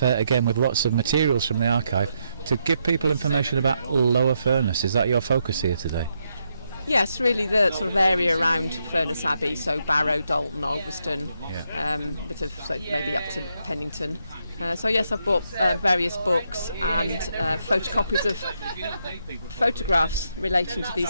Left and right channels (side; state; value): both; inverted; correlation -0.80